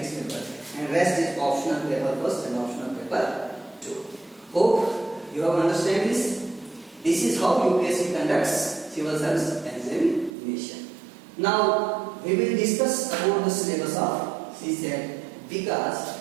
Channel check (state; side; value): drops out; left; at 10.3 s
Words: paper. And rest is optional paper first and optional paper 2. Hope you have understand this. This is how UPSC conducts civil service examination. Now we will discuss about the syllabus of CSAT,